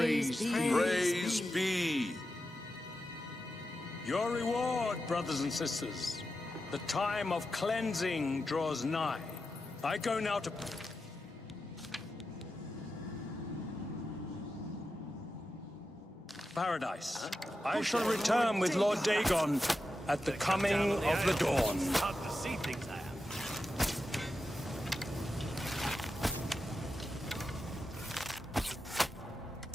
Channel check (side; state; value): both; normal; correlation 0.90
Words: Praise be. Your reward, brothers and sisters. The time of cleansing draws nigh. I go now to... Paradise. I shall return with Lord Dagon at the coming of the dawn. Hard to see things I have.